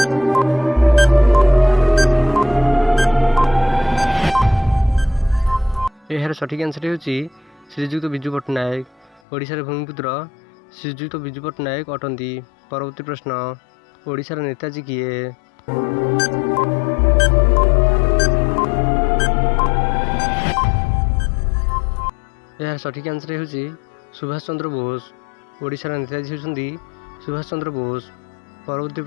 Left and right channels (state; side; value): drops out; right; at 9.2 s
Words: एहार सठिक आंसर हेउची श्रीजुक्त बिजू पट्टनायक। ओडिशार भूमिपुत्र श्रीजुक्त बिजू पट्टनायक अटंती। परवर्ती प्रश्न, ओडिशार नेताजी किए? यार सठिक आंसर हेउची सुभाष चंद्र बोस। ओडिशार नेताजी हेउचंती सुभाष चंद्र बोस। परवर्ती